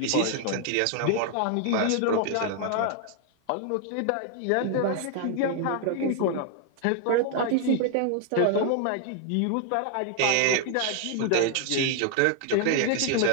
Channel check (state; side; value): different; both; correlation 0.00